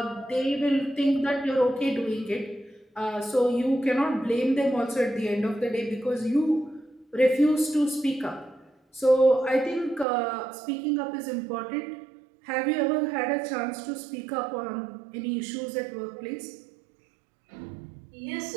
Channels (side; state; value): left; drops out; at 10.1 s